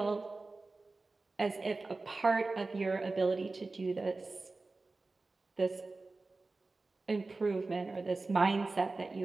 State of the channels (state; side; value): quieter; left; 3.5 dB